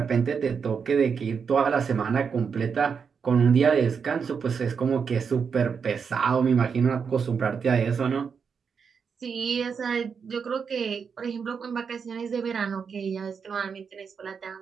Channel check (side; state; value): left; quieter; 6.2 dB